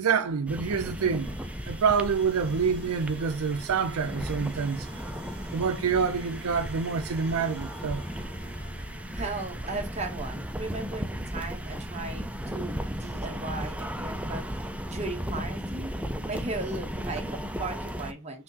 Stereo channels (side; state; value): left; quieter; 3.8 dB